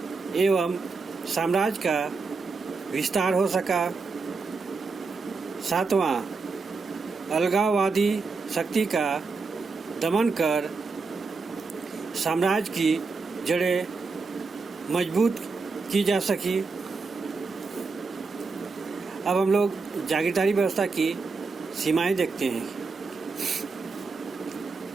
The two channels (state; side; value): quieter; left; 4.4 dB